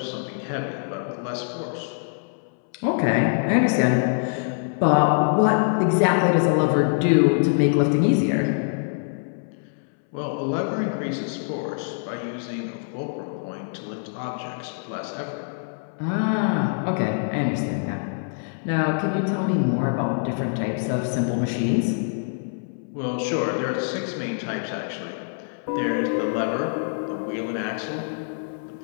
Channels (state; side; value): silent; right; 62 dB below the other